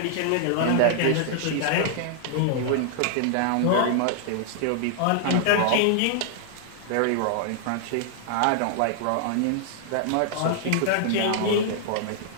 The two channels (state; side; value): different; both; correlation -0.01